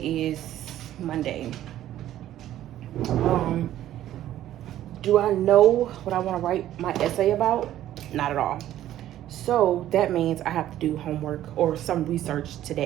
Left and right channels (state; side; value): quieter; left; 12.7 dB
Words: Monday. Do I know what I want to write my essay about? Not at all. So that means I have to do homework or some research